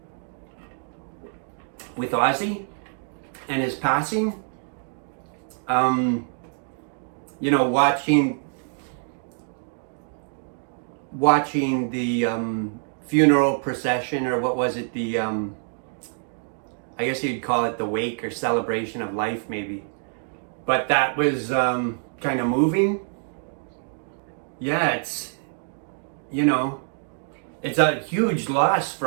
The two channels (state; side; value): silent; left; digital silence